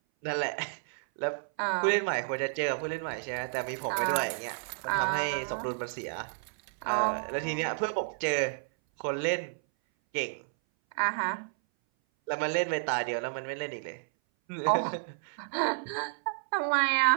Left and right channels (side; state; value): left; silent; 57 dB below the other